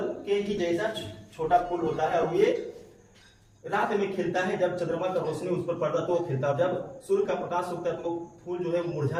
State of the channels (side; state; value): both; identical; correlation 1.00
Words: के ही जैसा छोटा फूल होता है, और ये रात में खिलता है, जब चंद्रमा का रोशनी उस पर पड़ता है तो वो खिलता है, जब सूर्य का प्रकाश उगता है तो फूल जो है मुरझा